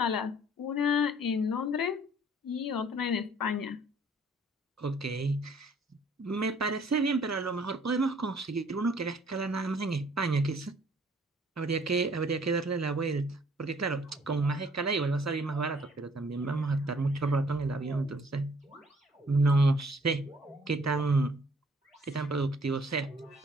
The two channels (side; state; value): both; normal; correlation 0.59